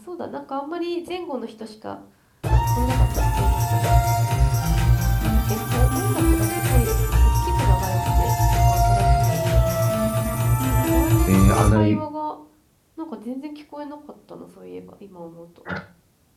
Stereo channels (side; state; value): both; identical; correlation 1.00